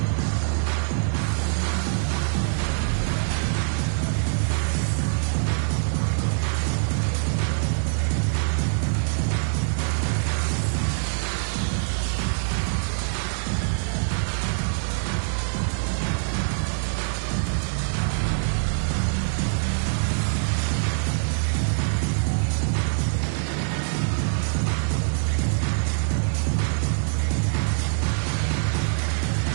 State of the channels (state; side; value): silent; left; digital silence